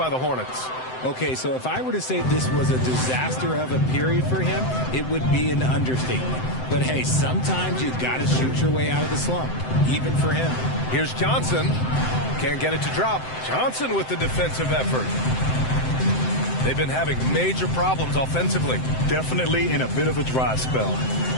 the Hornets. Okay, so if I were to say this was a disaster of a period for him, it would be an understatement. But hey, sometimes you've got to shoot your way out of the slump, even for him. Here's Johnson. Can't get it to drop. Johnson with the defensive effort. They've been having major problems offensively. Definitely in a bit of a dry spell.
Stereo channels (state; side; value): late; right; 7.8 ms